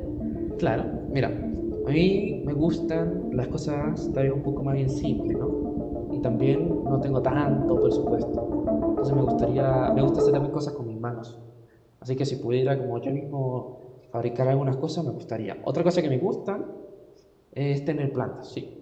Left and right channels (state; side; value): identical; both; correlation 1.00